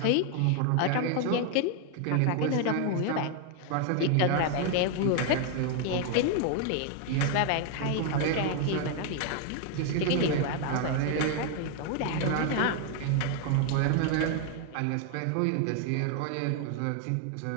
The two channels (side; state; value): both; different; correlation 0.00